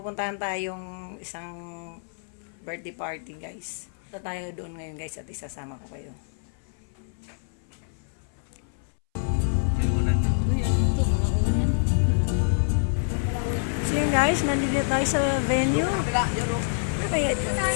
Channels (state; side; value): silent; right; 60 dB below the other